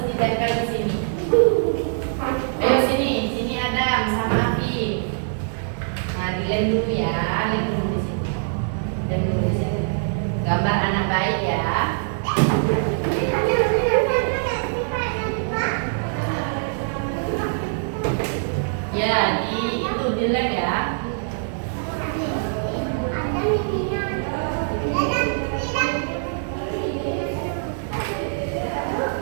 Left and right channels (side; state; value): left; silent; digital silence